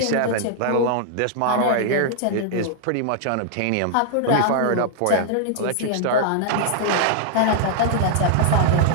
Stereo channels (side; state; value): both; different; correlation -0.01